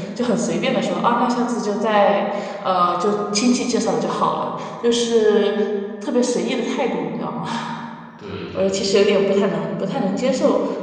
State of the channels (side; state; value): both; identical; correlation 1.00